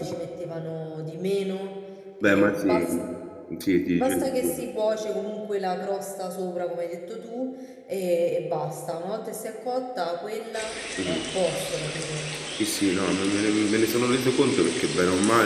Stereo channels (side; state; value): both; identical; correlation 1.00